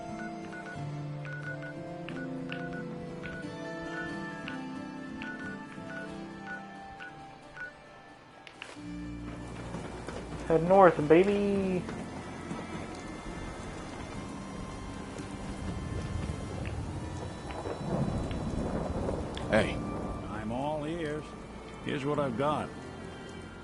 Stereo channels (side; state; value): both; identical; correlation 1.00